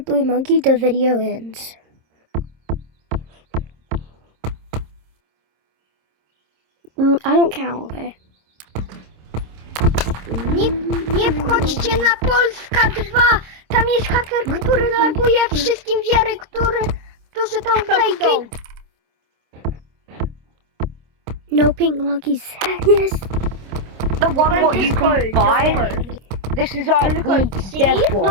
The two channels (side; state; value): left; late; 26 ms